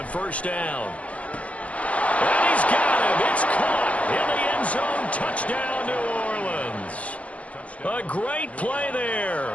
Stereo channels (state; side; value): late; right; 0.065 ms